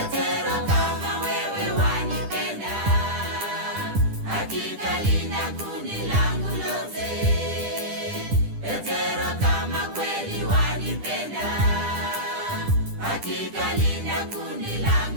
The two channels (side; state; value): left; late; 10 ms